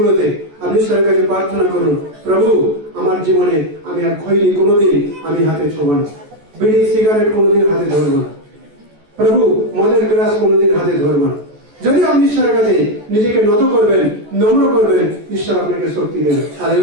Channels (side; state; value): left; late; 14 ms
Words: আপনি ঈশ্বরের কাছে প্রার্থনা করুন, প্রভু আমার জীবনে আমি আর খৈনি কোনোদিন আমি হাতে ছোঁব না, বিড়ি সিগারেট কোনোদিন হাতে ধরবো না, প্রভু মদের গ্লাস কোনোদিন হাতে ধরবো না। যদি আপনি ঈশ্বরের কাছে নিজেকে নত করবেন, নম্র করবেন, ঈশ্বর আপনাকে শক্তি দেবেন।